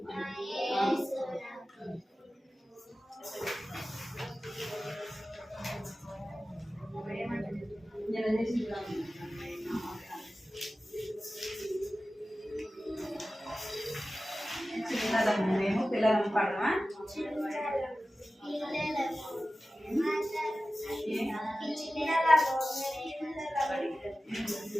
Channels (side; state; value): both; normal; correlation 0.95